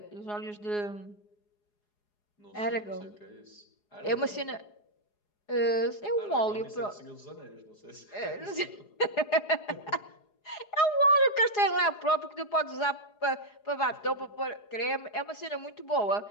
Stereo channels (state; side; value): late; right; 4.8 ms